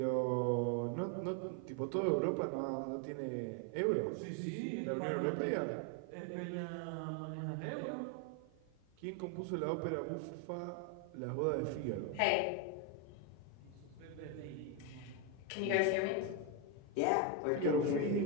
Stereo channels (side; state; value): both; different; correlation 0.02